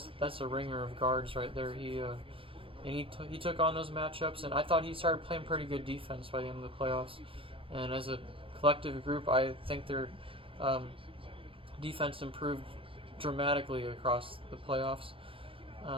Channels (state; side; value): late; left; 0.26 ms